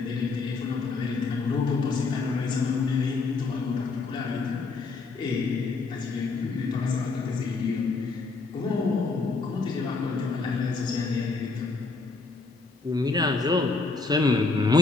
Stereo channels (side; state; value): right; quieter; 4.1 dB